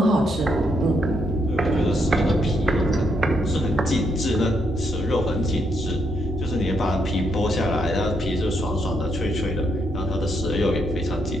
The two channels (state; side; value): normal; both; correlation 0.76